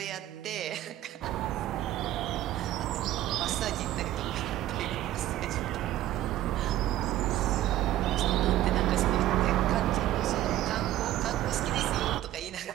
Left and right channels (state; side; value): quieter; left; 14.0 dB